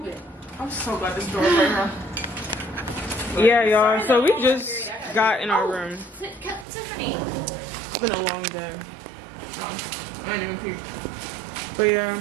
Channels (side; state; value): left; drops out; at 6.7 s